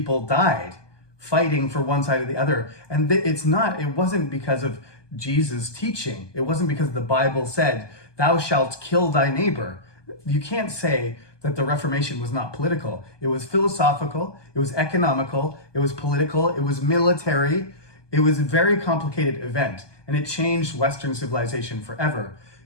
died fighting for one side or the other. And it wasn't because of Jesus' teaching. It wasn't because the Bible said, thou shalt kill thy neighbor. You can't say that the Reformation was not political. It was philosophical, it was economical, it was political, it was military. It was a very complicated event, and it changed Western civilization forever.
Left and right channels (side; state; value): right; late; 1.2 ms